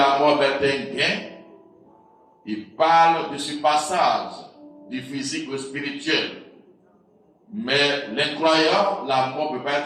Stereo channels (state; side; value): identical; both; correlation 1.00